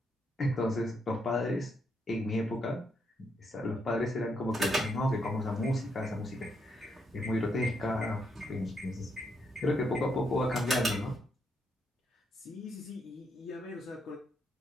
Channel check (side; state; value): both; normal; correlation 0.78